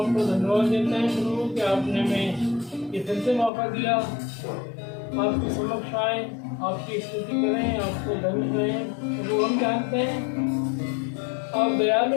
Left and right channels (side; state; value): right; drops out; at 3.5 s